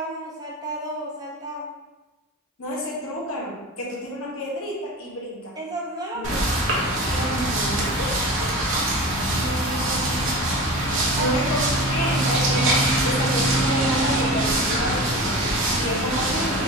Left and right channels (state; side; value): normal; both; correlation 0.32